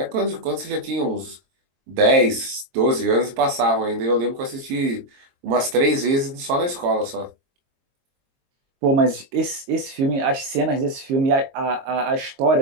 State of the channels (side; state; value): left; late; 22 ms